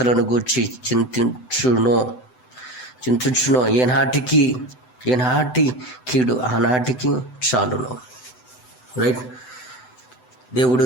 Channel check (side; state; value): right; late; 7.9 ms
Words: గూర్చి చింతించునో. ఏనాటి కీడు ఆనాటికి చాలును. రైట్. దేవుడు